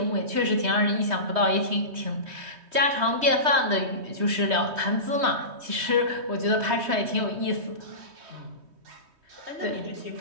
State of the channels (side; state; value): left; late; 3.2 ms